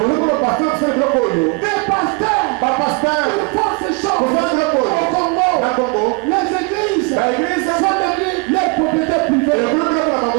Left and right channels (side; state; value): left; quieter; 29.5 dB